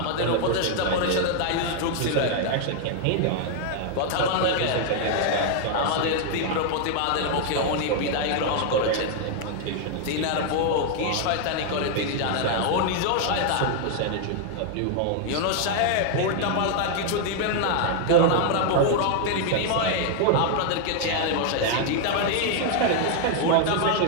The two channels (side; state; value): both; different; correlation 0.00